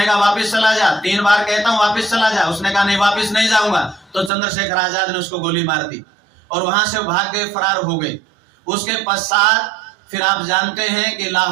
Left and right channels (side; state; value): left; drops out; at 4.3 s